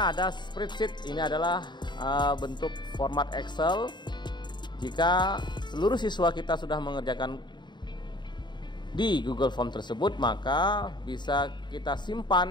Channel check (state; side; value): late; right; 0.22 ms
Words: ada spreadsheet. Ini adalah bentuk format Excel. Jika seluruh siswa kita sudah mengerjakan di Google Form tersebut, maka bisa kita